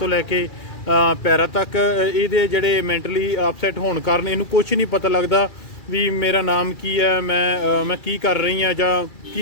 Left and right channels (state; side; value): late; right; 2.4 ms